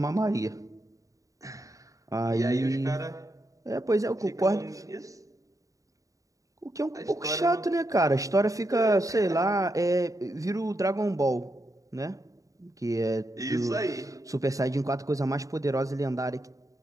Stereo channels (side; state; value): left; late; 0.16 ms